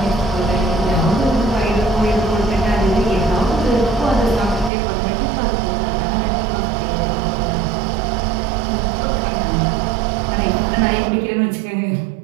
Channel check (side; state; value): left; drops out; at 4.7 s